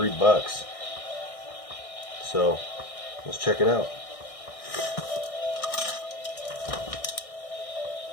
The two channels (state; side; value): late; right; 1.6 ms